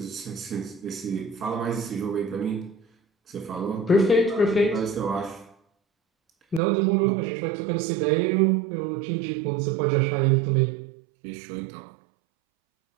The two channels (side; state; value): left; drops out; at 6.6 s